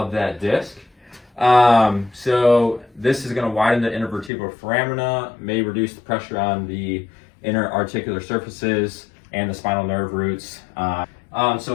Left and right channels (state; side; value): drops out; right; at 4.3 s